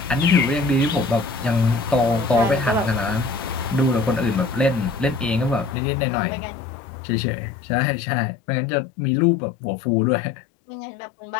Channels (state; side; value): drops out; right; at 5.8 s